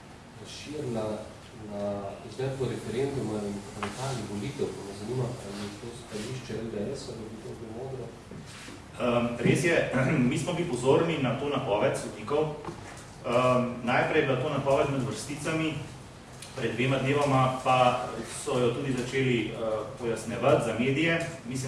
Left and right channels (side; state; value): both; identical; correlation 1.00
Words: razširila na izvedbo referenduma in parlamentarnih volitev, pa me zanima, ali je to stališče LDS, ali bi to bilo modro? Res je, mi smo bili pozorni na to napoved sodnikov. Najprej je bila to napoved med vrsticami, pred 2 dnevoma pa so jo tudi začeli pojasnevati za medije.